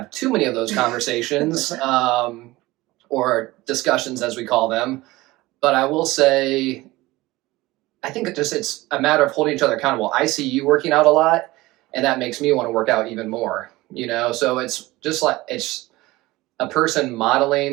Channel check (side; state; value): left; quieter; 19.5 dB